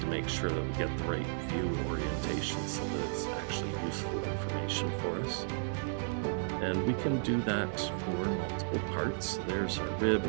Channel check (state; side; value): silent; left; 55 dB below the other